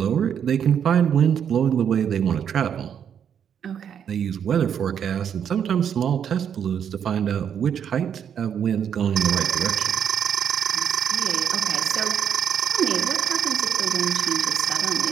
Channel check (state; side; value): quieter; left; 8.4 dB